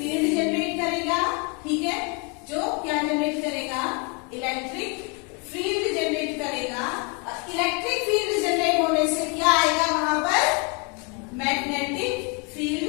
जनरेट करेगा, ठीक है। जो क्या जनरेट करेगा, इलेक्ट्रिक फील्ड जनरेट करेगा। और इलेक्ट्रिक फील्ड जनरेट होने से क्या आएगा, वहां पर मैग्नेटिक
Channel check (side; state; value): right; quieter; 32.3 dB